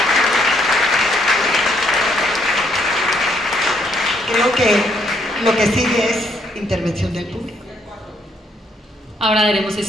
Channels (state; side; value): normal; both; correlation 0.71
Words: Creo que lo que sigue es intervención del público. Ahora daremos